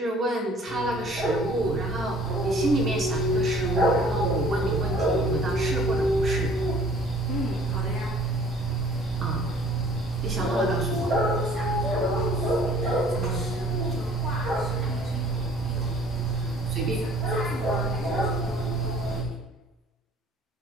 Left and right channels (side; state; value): both; normal; correlation 0.53